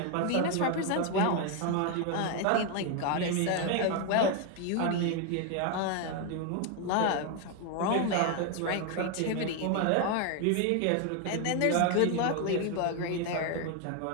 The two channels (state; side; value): different; both; correlation 0.01